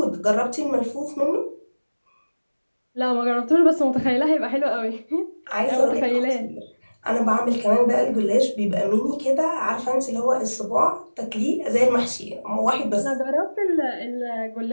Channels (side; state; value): both; inverted; correlation -1.00